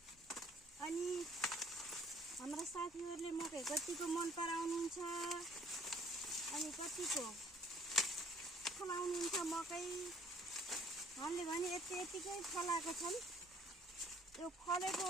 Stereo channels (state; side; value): normal; both; correlation 0.58